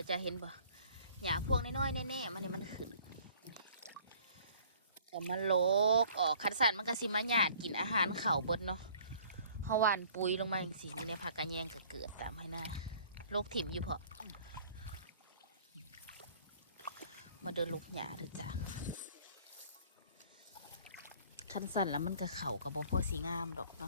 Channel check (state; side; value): inverted; both; correlation -0.54